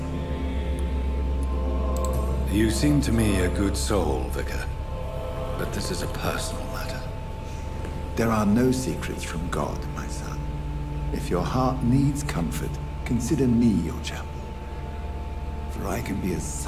You seem to me a good soul, Vicar. But this is a personal matter. There are no secrets from God, my son. If your heart needs comfort, consider me your chapel. For I can be as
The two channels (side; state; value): both; identical; correlation 1.00